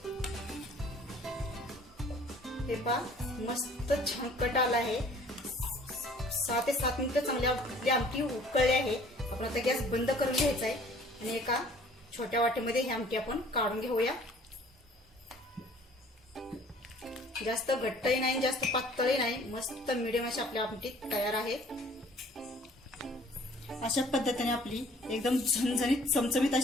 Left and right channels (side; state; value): both; normal; correlation 0.54